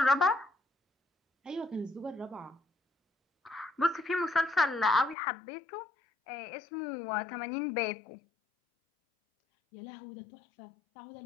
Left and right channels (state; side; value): drops out; right; at 5.2 s